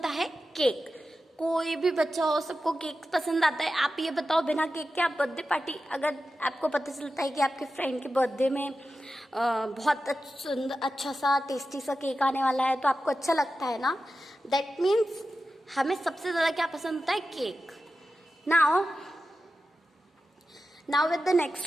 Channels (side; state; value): both; normal; correlation 0.92